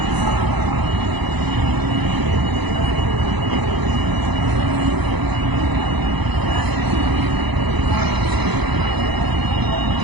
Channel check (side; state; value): left; late; 0.99 ms